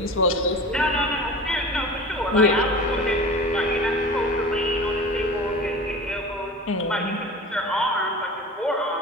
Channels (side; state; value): both; normal; correlation 0.36